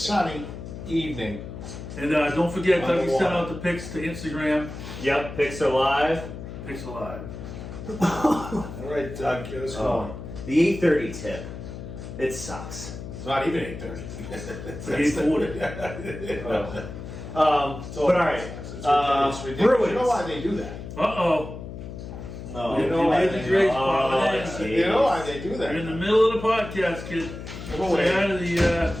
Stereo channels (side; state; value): left; noise; hum, 10 dB below the sound